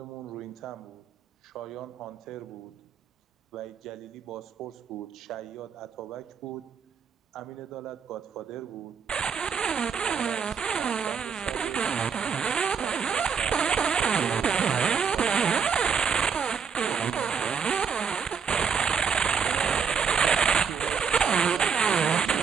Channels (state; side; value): quieter; left; 6.5 dB